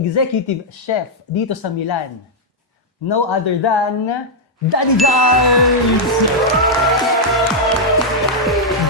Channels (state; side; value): normal; both; correlation -0.04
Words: chef dito sa Milan. No other than Daddy Jars!